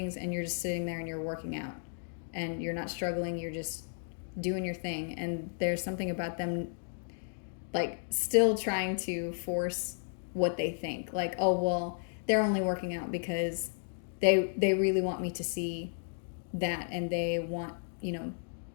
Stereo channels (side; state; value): right; silent; digital silence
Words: and you're just sitting there and you're working out and you're not struggling, you're just doing your thing. And there's something about them like still trying to force what they think, like, oh well, they're only working out because they really want me to see that, and they want